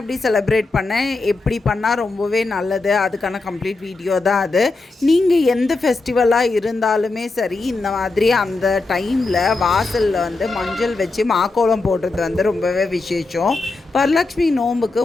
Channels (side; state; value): right; quieter; 3.5 dB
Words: செலிப்ரேட் பண்ணேன், எப்படி பண்ணால் ரொம்பவே நல்லது, அதுக்கான கம்ப்ளீட் வீடியோ தான் அது. நீங்கள் எந்த ஃபெஸ்டிவலாக இருந்தாலுமே சரி, இந்த மாதிரி அந்த டைமில் வாசலில் மஞ்சள் வச்சு மாக்கோலம் போடுறது ரொம்பவே விசேஷம். வரலட்சுமி நோம்புக்கு